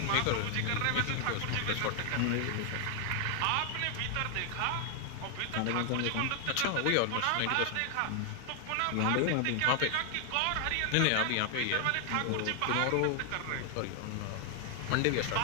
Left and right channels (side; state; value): both; different; correlation 0.00